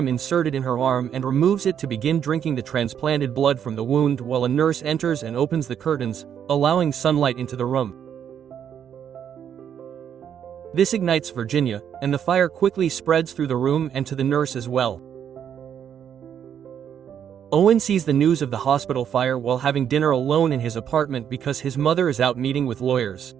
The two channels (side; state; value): left; quieter; 8.8 dB